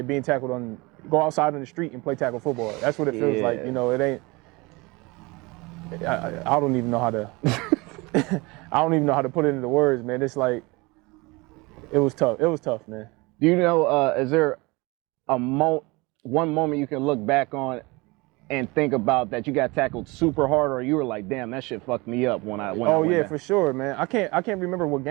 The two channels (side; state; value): left; quieter; 24.6 dB